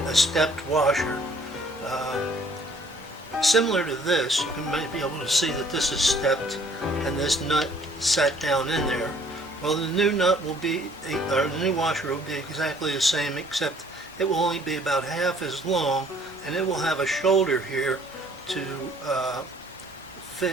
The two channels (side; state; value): both; normal; correlation 0.59